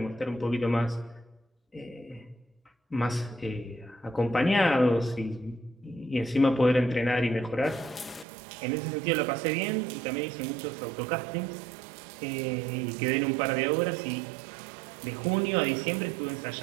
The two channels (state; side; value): drops out; left; at 8.2 s